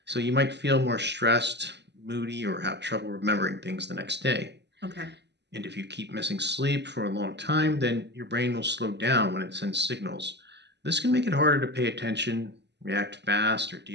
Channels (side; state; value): left; late; 0.50 ms